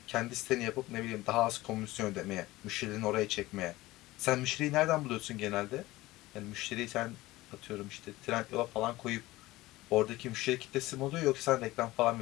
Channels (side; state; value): right; quieter; 18.5 dB